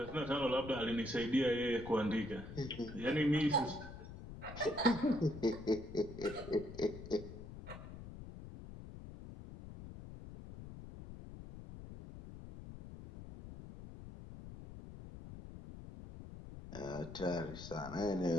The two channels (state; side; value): noise; left; rumble, 12 dB below the sound